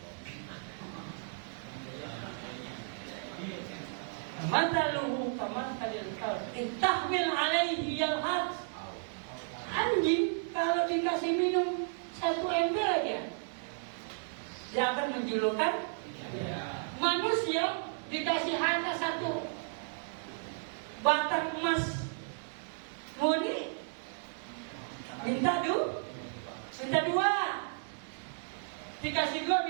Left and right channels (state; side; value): silent; left; digital silence